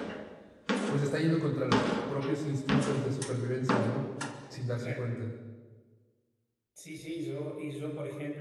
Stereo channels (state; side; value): identical; both; correlation 1.00